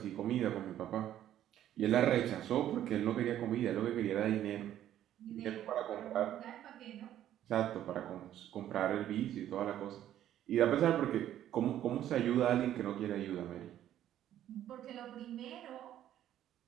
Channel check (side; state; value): left; quieter; 11.7 dB